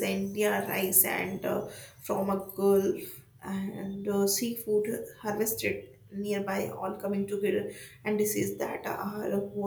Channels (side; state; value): both; identical; correlation 1.00